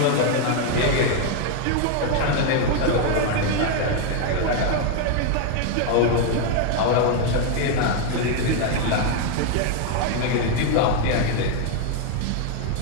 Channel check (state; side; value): different; both; correlation 0.01